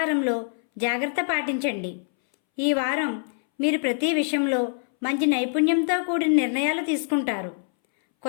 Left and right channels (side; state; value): right; silent; 62 dB below the other